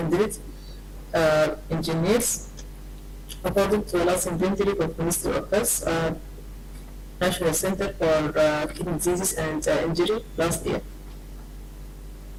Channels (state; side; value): identical; both; correlation 1.00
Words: engineers, according to the last inventory of Ministry of Health, National Center for Kidney Diseases and Injury last year.